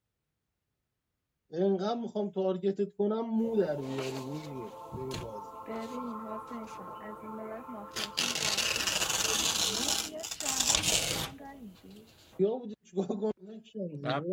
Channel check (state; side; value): identical; both; correlation 1.00